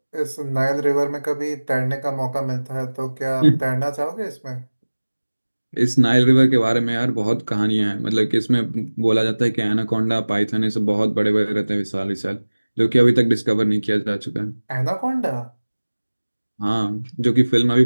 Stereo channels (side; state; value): both; inverted; correlation -1.00